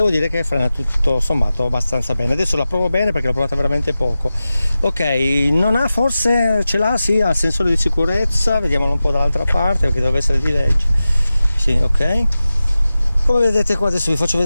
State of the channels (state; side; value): inverted; both; correlation -0.94